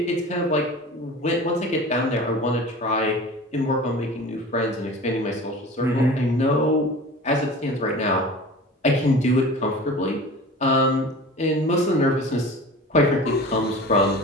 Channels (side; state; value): both; normal; correlation 0.38